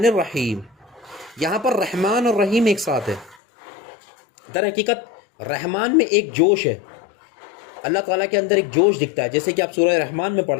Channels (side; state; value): right; drops out; at 3.4 s